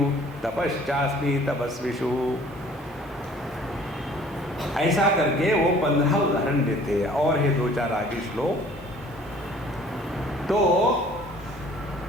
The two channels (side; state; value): both; normal; correlation 0.53